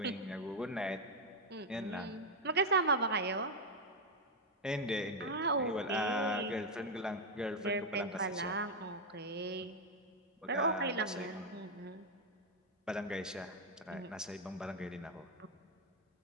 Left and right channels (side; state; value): both; normal; correlation 0.03